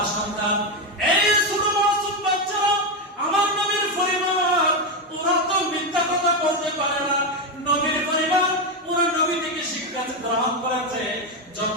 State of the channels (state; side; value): normal; both; correlation 0.09